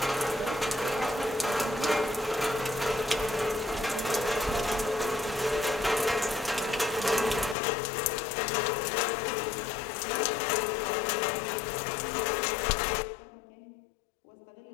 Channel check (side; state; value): right; drops out; at 7.6 s